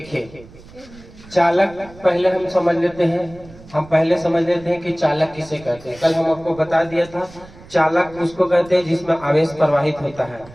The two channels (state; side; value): noise; right; rumble, 21 dB below the sound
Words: चालक पहले हम समझ लेते हैं कि चालक किसे कहते हैं। कल हम आपको बता दिया था, चालक उसको कहते हैं जिसमें आवेश प्रवाहित होता है,